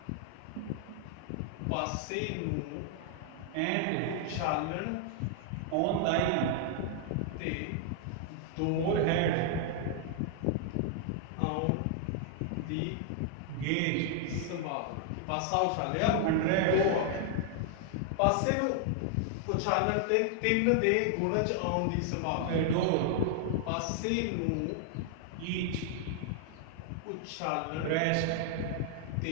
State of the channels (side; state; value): both; different; correlation 0.00